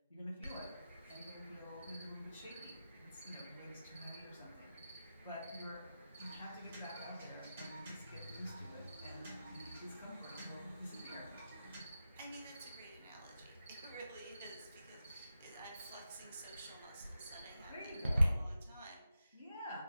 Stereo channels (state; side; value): inverted; both; correlation -0.91